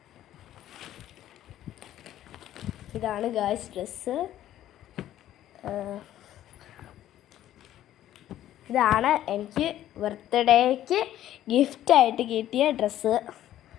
ഇതാണ് ഗായ്സ് ഡ്രസ്സ്. ഇതാണ് എനിക്ക് ബർത്ത്ഡേക്ക് ഗിഫ്റ്റായിട്ട് കിട്ടിയ ഡ്രസ്സ്.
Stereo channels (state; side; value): quieter; right; 12.6 dB